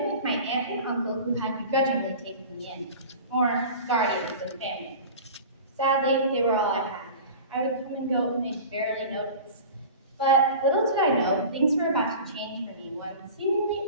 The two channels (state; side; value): inverted; both; correlation -0.37